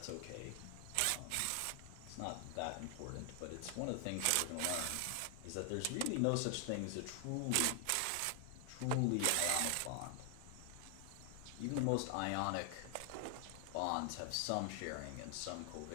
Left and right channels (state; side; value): different; both; correlation 0.00